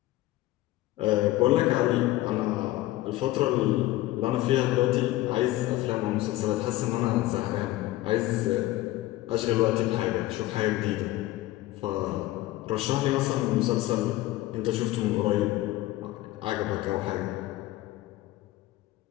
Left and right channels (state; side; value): quieter; right; 16.7 dB